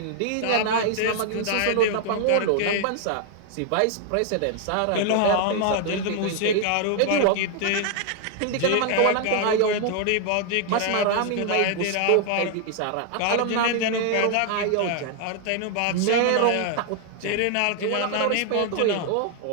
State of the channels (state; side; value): different; both; correlation 0.00